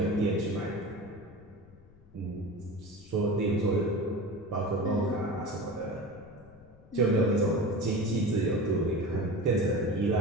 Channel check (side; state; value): left; noise; rumble, 25 dB below the sound